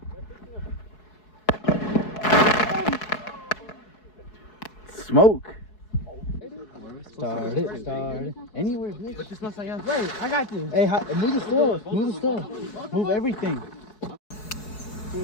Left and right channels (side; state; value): right; late; 4.7 ms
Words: Smoke. Start it. Anywhere, bitch. But this looks like us. Wait, I got this. Hey, move the stuff. Move the stuff. Move everything.